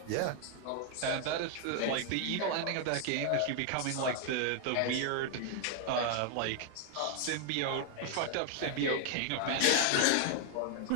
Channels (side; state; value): both; different; correlation 0.00